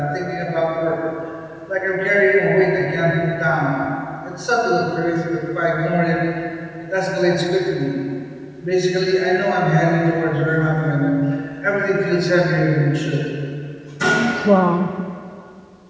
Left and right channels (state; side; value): identical; both; correlation 1.00